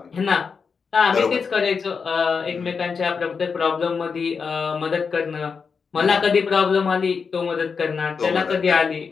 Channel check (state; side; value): quieter; right; 5.6 dB